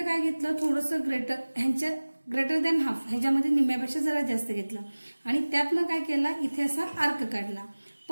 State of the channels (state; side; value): inverted; both; correlation -1.00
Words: काय घेतलं, थोडंसं ग्रेटर दॅन हाफ, ह्याच्यामध्ये निम्म्यापेक्षा जरा जास्त घेतलं आणि त्यातनं काय केला, इथे असा आर्क काढला,